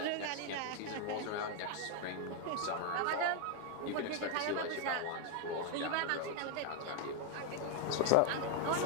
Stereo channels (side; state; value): both; different; correlation 0.00